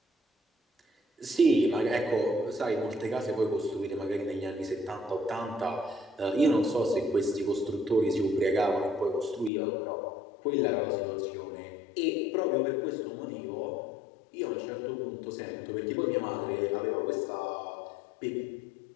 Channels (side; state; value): right; drops out; at 9.5 s